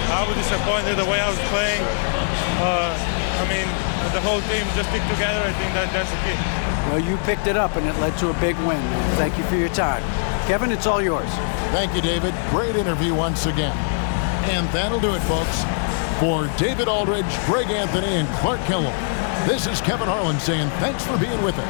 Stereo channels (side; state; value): right; silent; 59 dB below the other